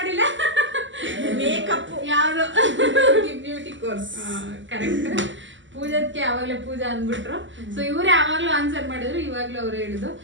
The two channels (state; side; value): late; left; 0.54 ms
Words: ಮೇಕಪ್ ಯಾವ್ದು ಬ್ಯೂಟಿ ಕೋರ್ಸ್. ಕರೆಕ್ಟ್. ಪೂಜಾದ್ಕೆ ಯಾವಾಗ್ಲೇ ಪೂಜಾ ಅಂದ್ಬಿಟ್ರು. ಸೊ ಇವರೇ ಯಾವಾಗ್ಲೂ ಆನ್ಸರ್ ಮಾಡಿದ್ರು, ಇವಾಗ್ಲೂ ಅವ್ರು ಹೇಳಿದ್ರು